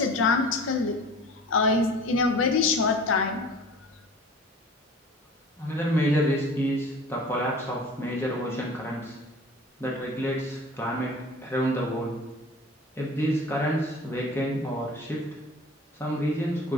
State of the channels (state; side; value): normal; both; correlation 0.43